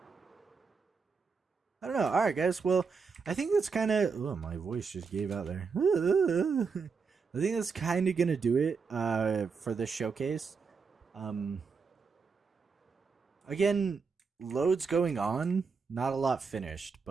I don't know. All right, guys. Well, I think that's kind of... Oh, my voice just gave out there. I think that's kind of going to do it for this showcase. Again, loads going on. Not a lot finished,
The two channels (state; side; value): quieter; left; 5.2 dB